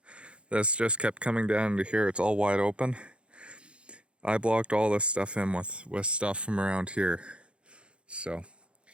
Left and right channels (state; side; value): late; left; 0.057 ms